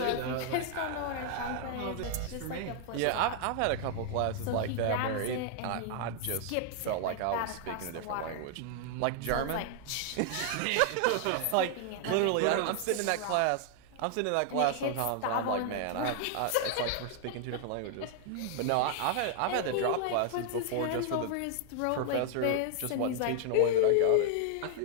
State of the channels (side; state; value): both; different; correlation 0.00